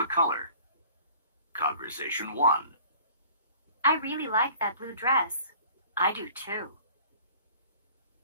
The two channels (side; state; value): both; inverted; correlation -0.50